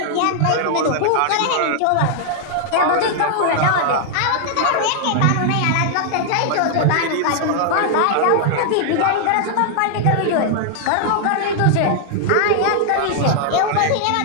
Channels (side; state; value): both; different; correlation 0.00